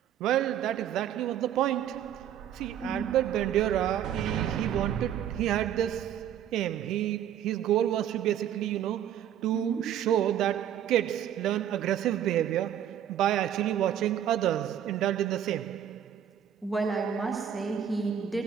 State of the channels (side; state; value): left; quieter; 10.0 dB